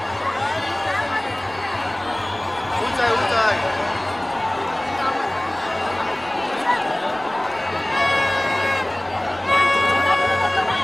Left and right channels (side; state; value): left; noise; rumble, 28 dB below the sound